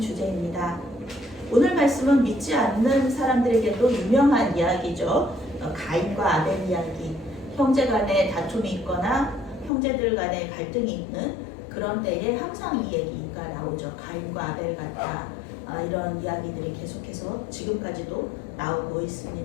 오늘 말씀은 믿지 않는 사람들에게도 유명한 이야기죠. 가인과 아벨 이야기. 형제 간에 다툼이 있거나 형제들 간에 갈등이 있는 그런 때에 항상 이 얘기가 나오죠. 가인과 아벨 같다. 이런 이야기들이 계속해서 지금까지도 나오고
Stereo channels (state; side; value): drops out; right; at 9.7 s